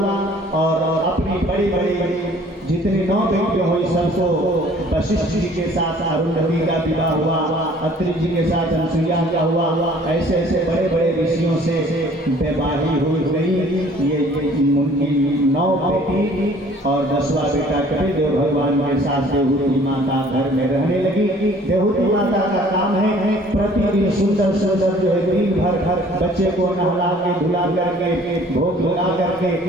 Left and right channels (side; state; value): both; normal; correlation 0.54